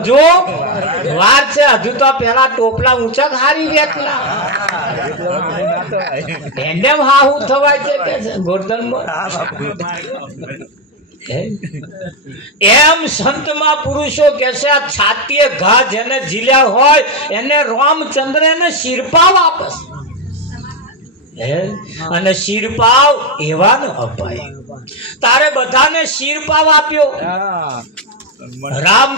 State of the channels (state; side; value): normal; both; correlation 0.08